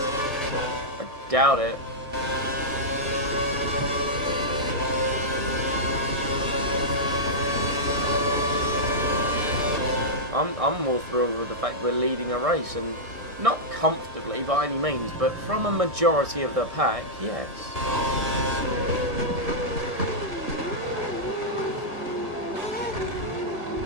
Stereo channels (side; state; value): left; late; 1.7 ms